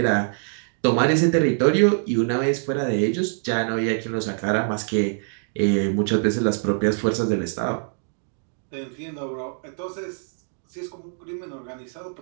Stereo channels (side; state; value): left; silent; 60 dB below the other